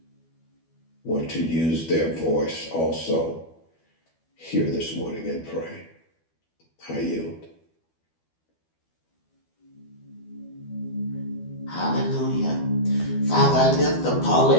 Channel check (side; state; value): right; late; 12 ms